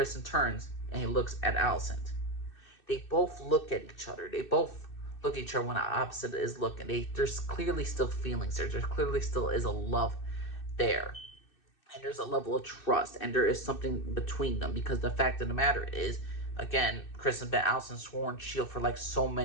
turns and he looks at Alicent. They both look at each other. They both look at each other when the opposite is looking. There's clearly still feelings there. There clearly still is a love there. And there's a level of trust, and there is something between them, because the fact of the matter is, again, Chris and Ben Allison sworn shield for like so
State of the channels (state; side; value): late; right; 2.6 ms